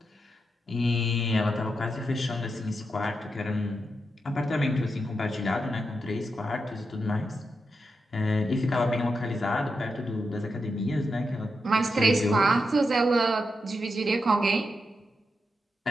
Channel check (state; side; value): normal; both; correlation 0.86